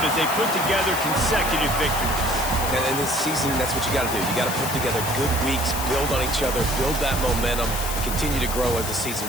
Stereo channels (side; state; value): left; noise; hiss, 6 dB below the sound